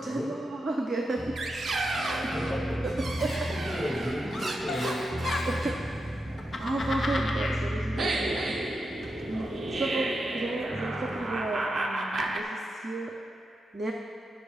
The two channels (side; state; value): both; normal; correlation 0.87